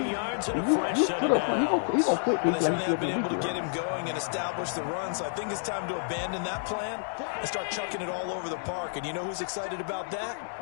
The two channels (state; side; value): silent; right; digital silence